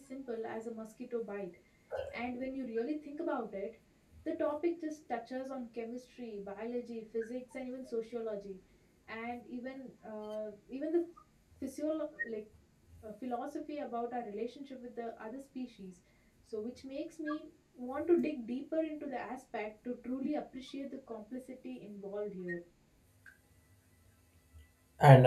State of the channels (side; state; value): both; identical; correlation 1.00